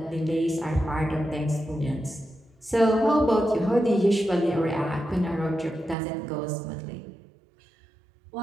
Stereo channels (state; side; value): drops out; left; at 6.0 s